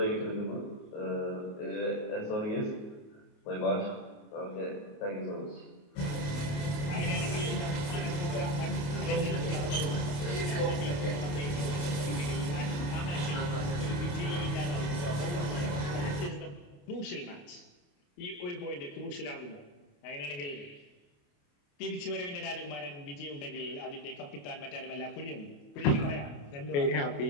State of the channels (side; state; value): right; late; 28 ms